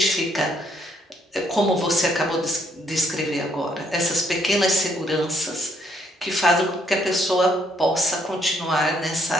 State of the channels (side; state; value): both; normal; correlation 0.70